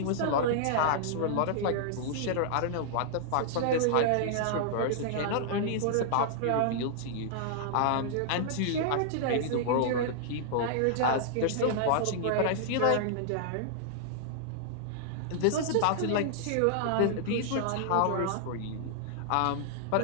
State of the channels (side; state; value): both; different; correlation -0.01